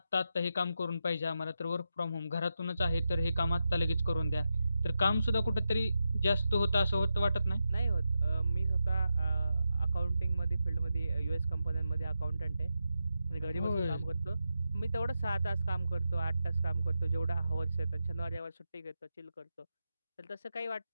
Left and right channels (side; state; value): both; inverted; correlation -0.88